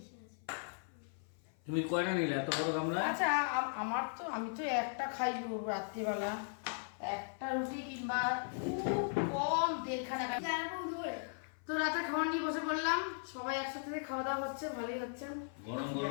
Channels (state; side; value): silent; right; 53 dB below the other